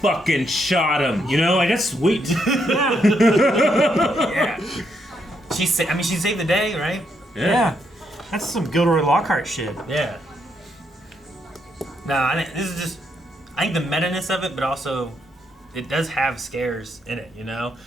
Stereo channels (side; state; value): both; normal; correlation 0.77